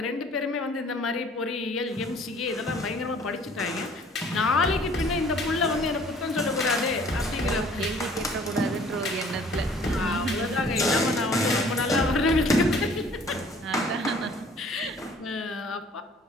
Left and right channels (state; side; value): normal; both; correlation 0.54